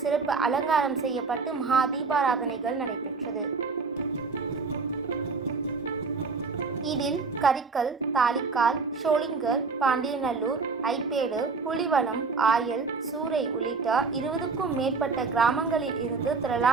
சிறப்பு அலங்காரம் செய்யப்பட்டு மகா தீபாராதனைகள் நடைபெற்றது. இதில் கரிக்கல், தாலிக்கால், ஷோலிங்கர், பாண்டியநல்லூர், ஐப்பேடு, புலிவலம், ஆயல், சூறை உள்ளிட்ட 20க்கும் மேற்பட்ட கிராமங்களில் இருந்து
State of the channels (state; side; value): quieter; left; 4.5 dB